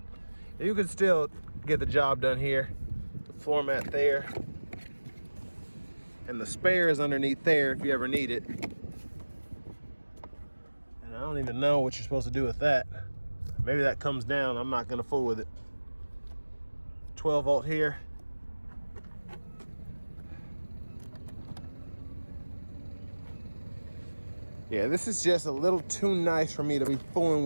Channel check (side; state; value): both; inverted; correlation -1.00